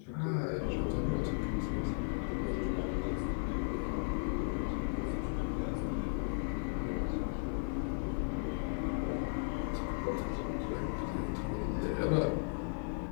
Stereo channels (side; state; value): right; silent; 54 dB below the other